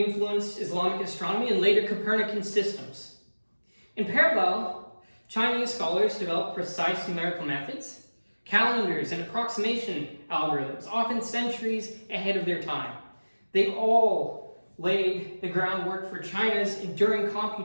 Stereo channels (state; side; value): inverted; both; correlation -1.00